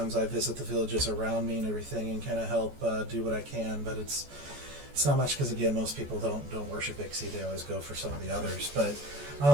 I visit the villages around me and everything, and kind of help do what I can, but it's not much, because again, most people don't worship Ixie. They always go for some of the others, but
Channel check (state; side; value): late; left; 14 ms